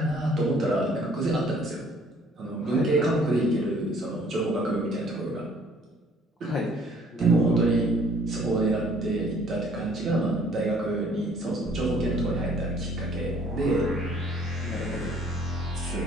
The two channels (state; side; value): normal; both; correlation 0.58